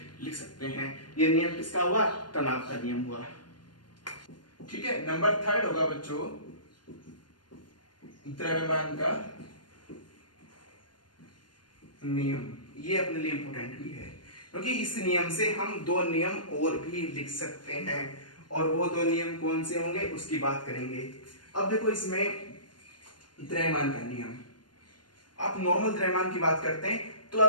लिख सकते हैं। ये नियम किसका हुआ? तनाव का नियम हुआ। ठीक है, नंबर 3 होगा बच्चों द्रव्यमान का नियम। ये अपने लिए इंपॉर्टेंट भी है क्योंकि इस नियम से हम दो नियम और भी लिख सकते हैं, और वो दो नियम कौन से होंगे उसकी बात करेंगे। अब देखो इसमें द्रव्यमान का नियम, आप नॉर्मल द्रव्यमान की बात करते हैं तो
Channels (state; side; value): late; right; 0.71 ms